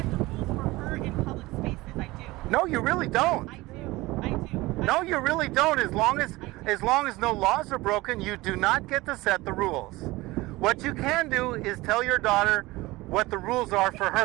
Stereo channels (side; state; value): left; quieter; 20.2 dB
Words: the rules for her in public spaces. I do. No, you really don't. I do. I do. No, you really don't. As long as no laws are broken, you do not get to set the rules. What you can do is tell your daughter what the rules are for